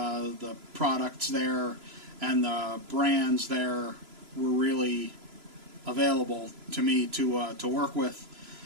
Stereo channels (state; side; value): late; left; 3.0 ms